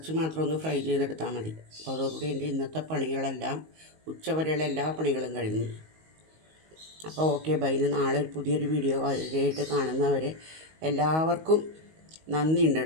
മാത്രം ഒന്ന് ഫ്രൈ ചെയ്തെടുത്താൽ മതി. അപ്പോൾ അതോടുകൂടി എൻ്റെ ഇന്നത്തെ പണികളെല്ലാം, ഉച്ചവരെയുള്ള എല്ലാ പണികളും കഴിഞ്ഞു. അപ്പോൾ ഓക്കെ ബൈ. നാളെ ഒരു പുതിയൊരു വീഡിയോ ആയിട്ട് കാണുന്നവരെ എല്ലാവർക്കും നന്ദിയുണ്ട്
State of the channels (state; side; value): late; left; 19 ms